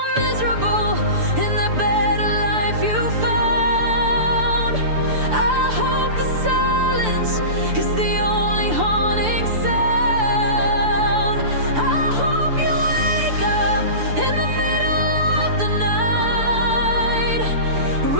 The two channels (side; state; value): left; late; 6.8 ms